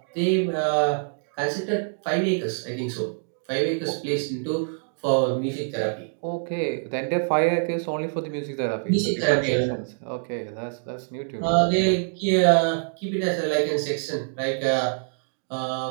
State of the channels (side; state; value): left; silent; digital silence